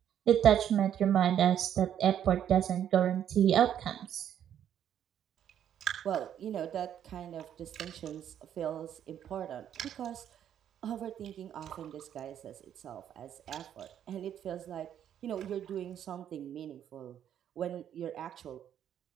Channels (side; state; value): left; quieter; 9.9 dB